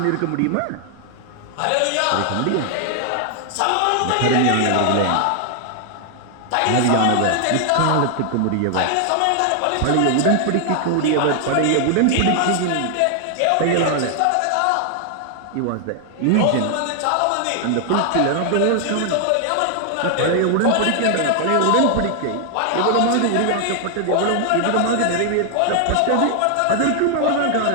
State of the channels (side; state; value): both; different; correlation 0.00